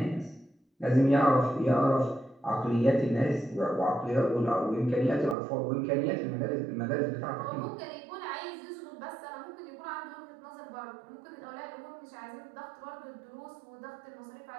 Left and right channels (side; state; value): left; drops out; at 5.4 s